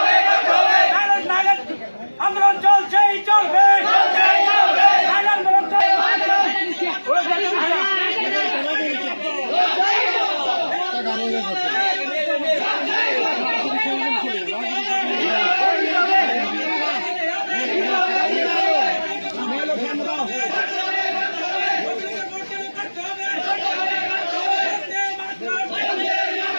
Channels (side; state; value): both; inverted; correlation -1.00